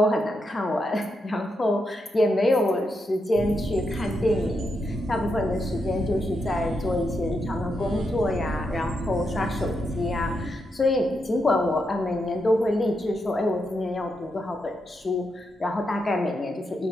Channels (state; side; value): normal; both; correlation 0.83